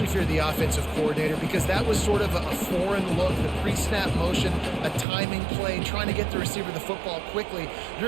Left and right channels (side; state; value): left; drops out; at 5.1 s